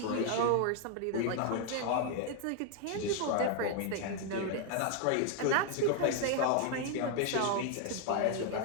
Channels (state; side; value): different; both; correlation 0.00